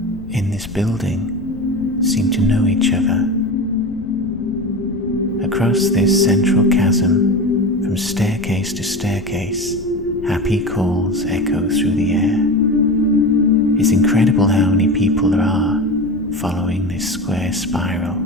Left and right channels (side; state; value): left; noise; rumble, 16 dB below the sound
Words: in this building, seem to know each other. Across this central chasm, from staircase to staircase, happy calls echo through the air. It's incredible how many people there are following this square spiral.